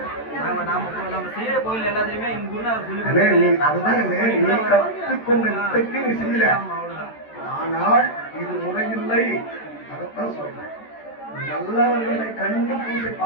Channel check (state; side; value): late; right; 14 ms